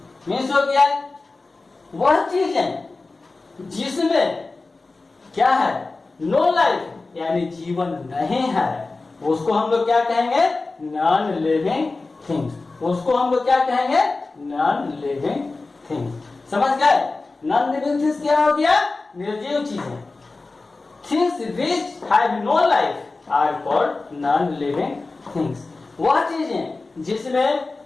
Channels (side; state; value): right; quieter; 3.6 dB